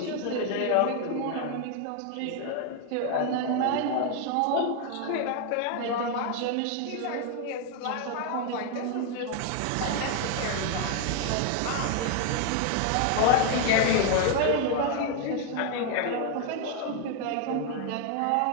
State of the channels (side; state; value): both; different; correlation 0.00